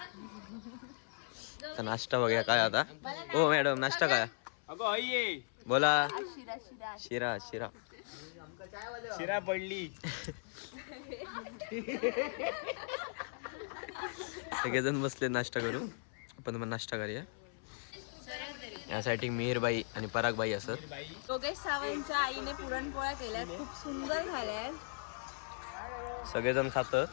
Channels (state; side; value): silent; right; 53 dB below the other